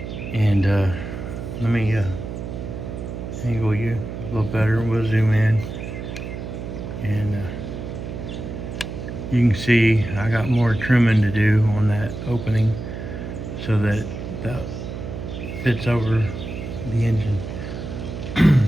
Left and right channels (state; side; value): noise; right; hum, 7 dB below the sound